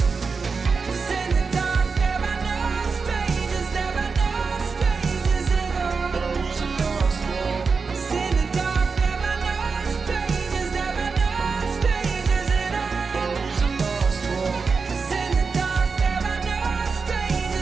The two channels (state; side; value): quieter; left; 4.9 dB